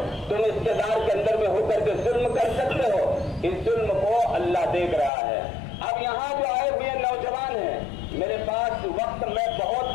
तुम इक़्तिदार के अंदर में होकर के जुल्म कर सकते हो। इस जुल्म को अल्लाह देख रहा है। अब यहाँ जो आए हुए नौजवान हैं, मेरे पास वक्त मैं बहुत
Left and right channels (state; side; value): drops out; right; at 5.1 s